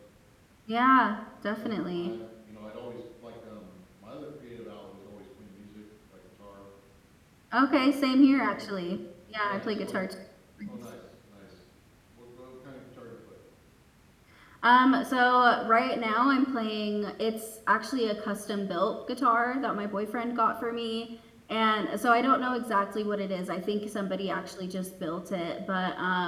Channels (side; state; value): both; identical; correlation 1.00